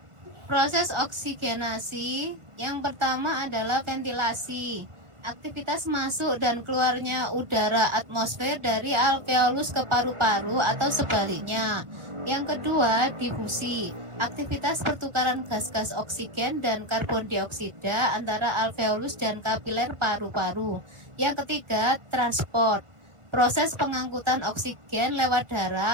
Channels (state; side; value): late; left; 1.4 ms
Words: Proses oksigenasi yang pertama adalah ventilasi. Aktivitas masuk dan keluarnya udara atmosfer dari alveolus ke paru-paru atau sebaliknya. Yang kedua, difusi. Aktivitas pertukaran gas-gas oksigen dan karbon dioksida antara alveolus dan kapiler paru-paru. Yang ketiga, transport. Proses pengangkutan oksigen lewat